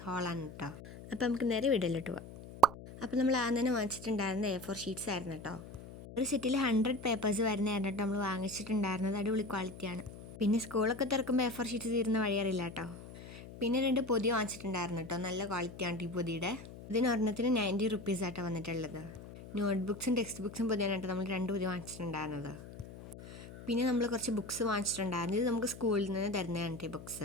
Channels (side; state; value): left; noise; hum, 15 dB below the sound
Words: ഹാളാണ് കേട്ടോ. അപ്പോൾ നമുക്ക് നേരെ വീഡിയോയിലോട്ട് പോവാം. അപ്പോൾ നമ്മൾ ആദ്യം തന്നെ വാങ്ങിച്ചിട്ടുണ്ടായിരുന്നത് A4 ഷീറ്റ്സ് ആയിരുന്നു കേട്ടോ. ഒരു സെറ്റിൽ 100 പേപ്പേഴ്സ് വരുന്നതായിരുന്നു കേട്ടോ നമ്മൾ വാങ്ങിച്ചിട്ടുണ്ടായിരുന്നത്. അടിപൊളി ക്വാളിറ്റിയാണ്. പിന്നെ സ്കൂളൊക്കെ തുറക്കുമ്പോൾ A4 ഷീറ്റ്സ് തീരുന്ന വഴിയറിയില്ല കേട്ടോ. പിന്നെ 2 പൊതി വാങ്ങിച്ചിട്ടുണ്ടായിരുന്നു കേട്ടോ. നല്ല ക്വാളിറ്റിയാണ് ഈ പൊതിയുടെ. ഇതിന് ഒരെണ്ണത്തിന് 90 റുപ്പീസ് ആട്ടോ വന്നിട്ടുള്ളത്. നോട്ട്ബുക്സും ടെക്സ്റ്റ് ബുക്സും പൊതിയാണ് കേട്ടോ നമ്മൾ 2 പൊതി വാങ്ങിച്ചിട്ടുണ്ടായിരുന്നത്. പിന്നെ നമ്മൾ കുറച്ച് ബുക്സ് വാങ്ങിച്ചിട്ടുണ്ടായിരുന്നു. ഇത് നമുക്ക് സ്കൂളിൽ നിന്ന് തരുന്നതാണ് ഈ